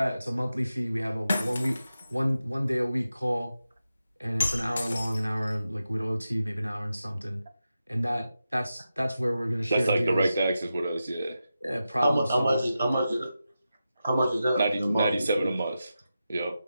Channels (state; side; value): inverted; both; correlation -0.91